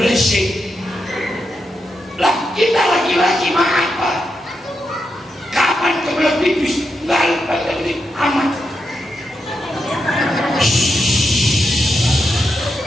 Lah kita laki-laki mah apa? Kapan kebelah pipis? Nggak lupa lagi amat.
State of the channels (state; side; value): normal; both; correlation 0.84